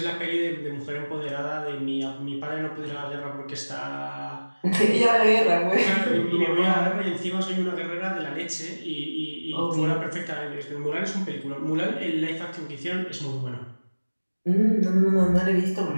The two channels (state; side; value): inverted; both; correlation -1.00